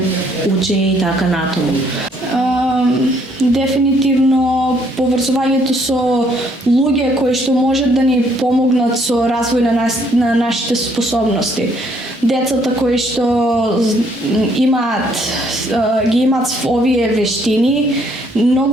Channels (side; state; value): both; normal; correlation 0.67